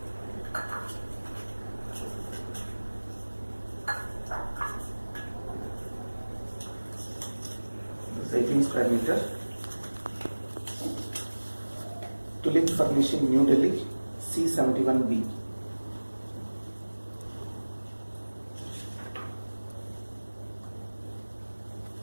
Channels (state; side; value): inverted; both; correlation -1.00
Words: This is 18 square meter. Tulip Furnishing, New Delhi, C71B.